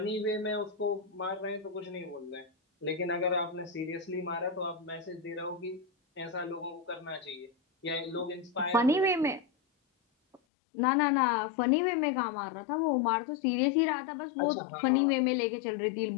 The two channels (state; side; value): drops out; right; at 10.4 s